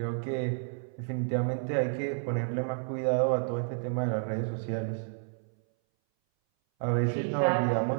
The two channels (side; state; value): left; silent; 58 dB below the other